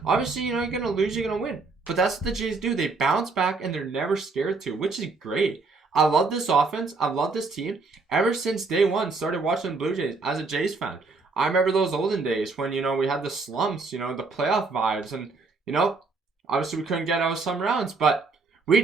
Obviously, you know, you're going to lose, you're going to win. But that's what the Jays do. They bounce back and they're never scared to, which is great. I love this offense. I love this team. Ever since day one, started watching the Blue Jays as a Jays fan. I remember those olden days when, you know, we had the slumps, you know, the playoff vibes. And, you know, obviously we couldn't get out of some rounds. But we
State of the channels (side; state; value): left; quieter; 4.0 dB